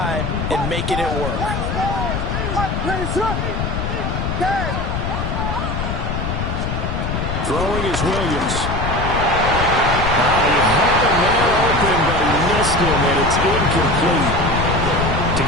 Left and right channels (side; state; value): left; noise; rumble, 2 dB below the sound